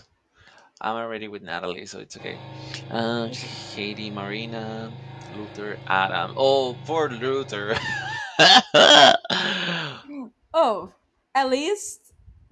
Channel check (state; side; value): identical; both; correlation 1.00